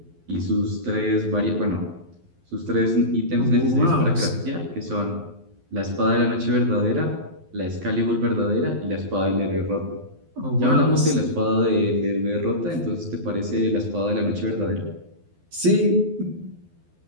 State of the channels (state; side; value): late; left; 12 ms